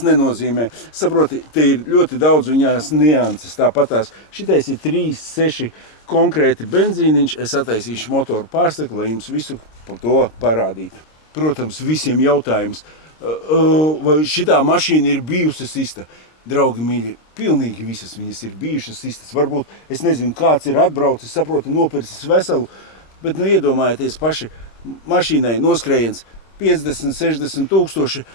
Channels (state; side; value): late; right; 26 ms